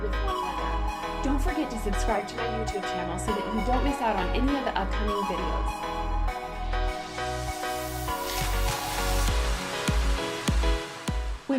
with one another. Don't forget to subscribe to my YouTube channel so that you don't miss out on any of the upcoming videos.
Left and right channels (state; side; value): identical; both; correlation 1.00